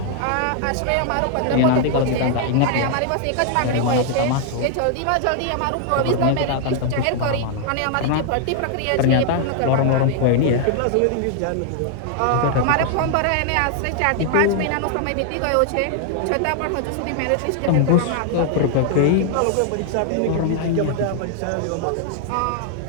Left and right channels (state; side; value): different; both; correlation 0.00